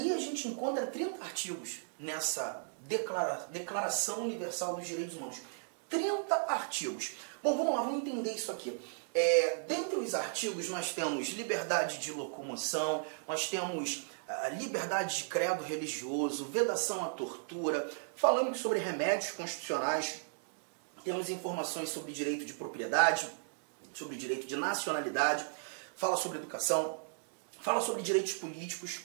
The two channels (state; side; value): silent; left; digital silence